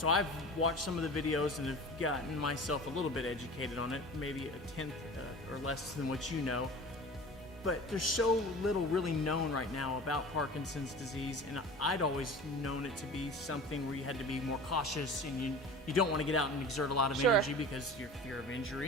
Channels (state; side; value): normal; both; correlation 0.38